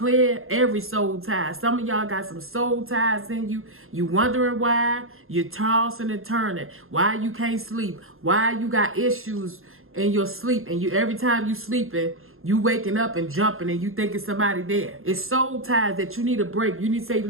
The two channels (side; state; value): left; late; 0.61 ms